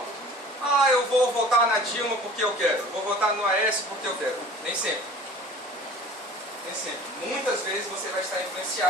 Eu vou votar na Dilma porque eu quero, vou votar no Aécio porque eu quero. Nem sempre. Nem sempre. Muitas vezes você vai estar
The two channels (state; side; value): normal; both; correlation 0.44